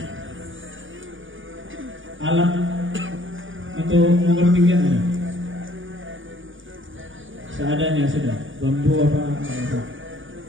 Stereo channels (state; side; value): late; left; 0.57 ms